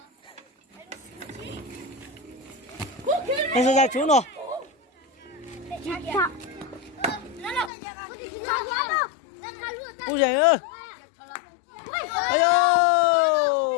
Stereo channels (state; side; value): drops out; right; at 7.7 s